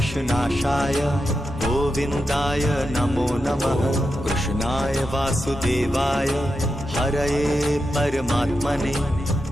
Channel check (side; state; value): both; normal; correlation 0.88